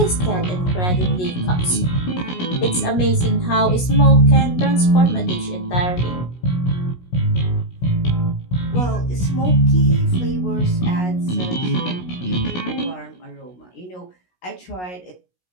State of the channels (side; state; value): right; late; 16 ms